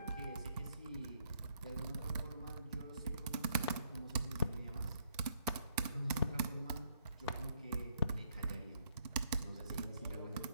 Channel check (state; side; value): inverted; both; correlation -0.70